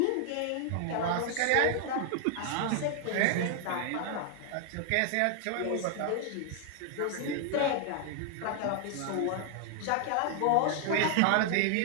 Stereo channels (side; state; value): both; different; correlation 0.00